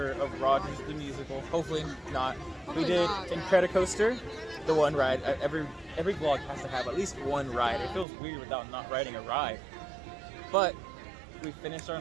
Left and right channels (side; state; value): left; drops out; at 8.1 s